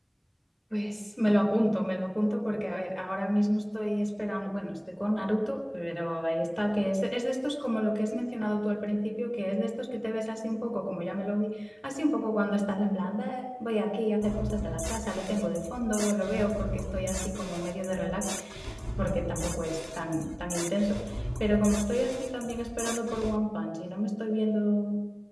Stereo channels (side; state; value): both; identical; correlation 1.00